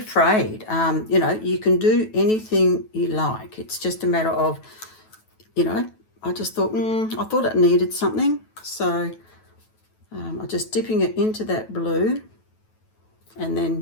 You know, you can do anything you like. It's just a matter of, you know, I just thought, I thought it needed something. So I'm just dipping it into that blue and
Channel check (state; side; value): late; right; 9.2 ms